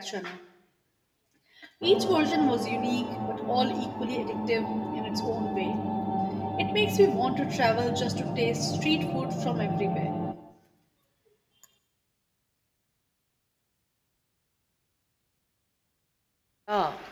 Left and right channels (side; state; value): both; identical; correlation 1.00